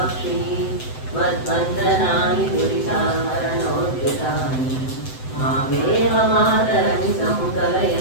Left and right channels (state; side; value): late; right; 7.8 ms